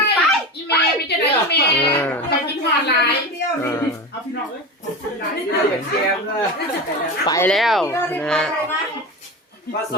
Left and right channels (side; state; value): both; normal; correlation 0.25